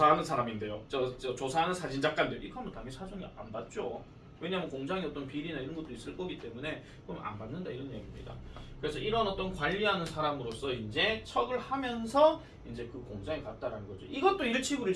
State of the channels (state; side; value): identical; both; correlation 1.00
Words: 사람인데요. 저 조사하는 사진작가인데요. 이거 하면 당연히 사정이 안 받죠. 왜냐하면 공장에 어떤 비리나 이런 것도 있을 거기 때문에 그럼 안 받는다 이런 얘기입니다. 그래서 이런 어떤 관리하는 사람으로서 이제 척을 하면서 이제 그 공장에 갔다라는 거죠. 이것도